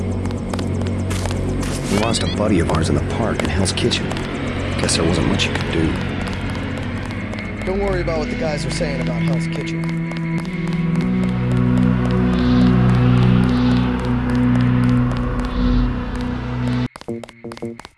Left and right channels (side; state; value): both; identical; correlation 1.00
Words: We lost a buddy of ours in the park in Hell's Kitchen. Guess there wasn't much you could do. Don't worry about what the guys are saying about Hell's Kitchen.